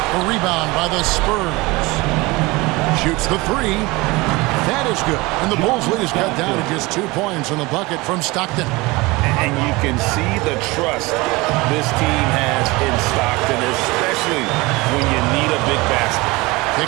A rebound by the Spurs. Shoots the 3. That is good. And the Bulls lead is cut down to just 2 points on the bucket from Stockton. And you can see the trust this team has in Stockton, especially when you need a big basket.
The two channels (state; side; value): quieter; left; 22.9 dB